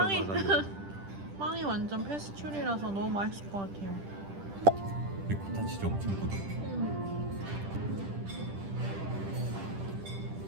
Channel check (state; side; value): late; left; 10 ms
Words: 빵이 완전 페스츄리라서 너무 맛있을 것 같아요. 리코타 치즈 엄청 부드러워.